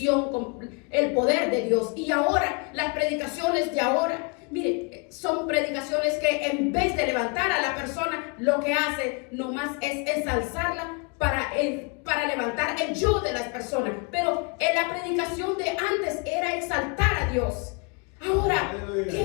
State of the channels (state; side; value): quieter; right; 33.3 dB